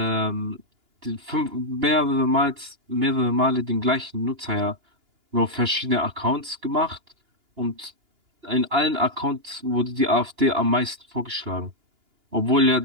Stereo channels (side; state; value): left; late; 2.9 ms